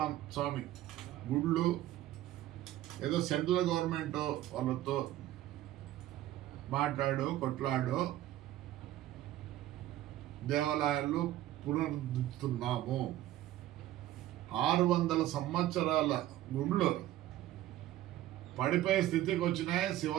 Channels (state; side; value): quieter; left; 14.1 dB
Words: స్వామి గుళ్ళు ఏదో సెంట్రల్ గవర్నమెంట్ వాళ్ళతో కొట్లాడు దేవాలయాలు పునరుద్ధరిస్తున్నాము. 600 సంవత్సరాల గుళ్ళు పడిపోయే స్థితికి వచ్చినాయి.